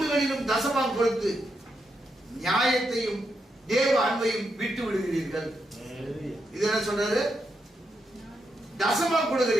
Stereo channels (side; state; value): both; normal; correlation 0.82